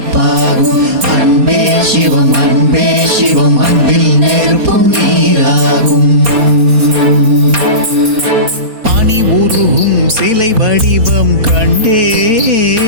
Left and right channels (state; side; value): late; left; 4.2 ms